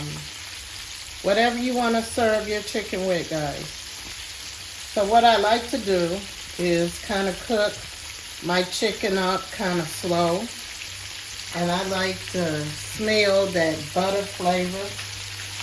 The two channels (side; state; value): both; identical; correlation 1.00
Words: whatever you want to serve your chicken with, guys. So what I like to do is kind of cook my chicken up kind of slow. And I like to smell that butter flavor.